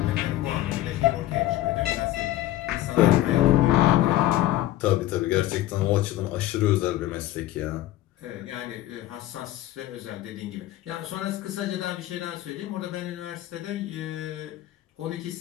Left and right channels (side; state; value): right; quieter; 14.9 dB